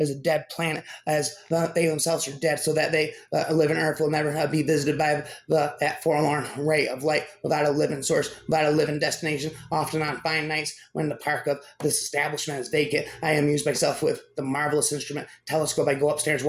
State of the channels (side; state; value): both; identical; correlation 1.00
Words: a dead planet, as they themselves are dead, so that they live in earth will never be visited by that forlorn ray of light, without a living source, without a living destination. Often on fine nights when the park of this establishment is vacant, I amuse myself with the marvelous instrument telescope. I go upstairs,